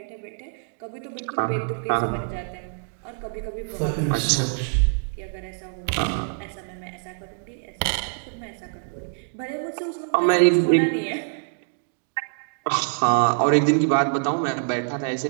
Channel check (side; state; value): left; silent; digital silence